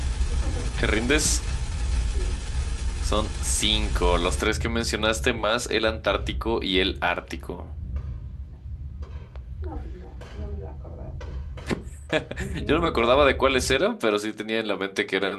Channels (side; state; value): both; identical; correlation 1.00